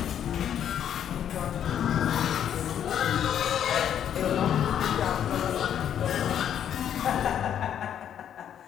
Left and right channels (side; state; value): right; quieter; 9.5 dB